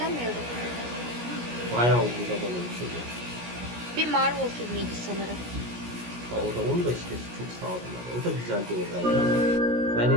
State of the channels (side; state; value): left; late; 17 ms